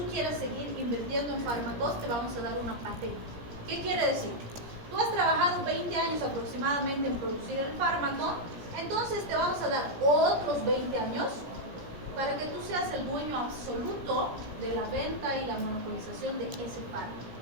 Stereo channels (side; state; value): left; late; 17 ms